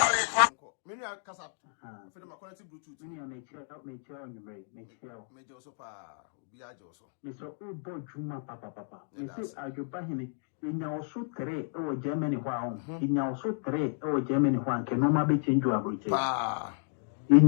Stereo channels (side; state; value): right; silent; digital silence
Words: Maybe I cast up for the quality Bluetooth. Many on a chair, help me chair on the way, make chair. Major so far, be I also. Mr. Ubo Juma Papa. Mrs. Adwepahene, in your so three or Germany wow, in your so three or Germany one can no be change your abridge. In